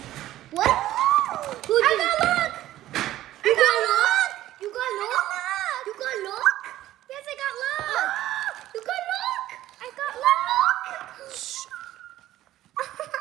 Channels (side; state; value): left; quieter; 14.2 dB